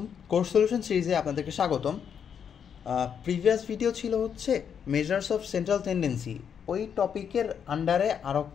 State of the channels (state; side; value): quieter; right; 7.7 dB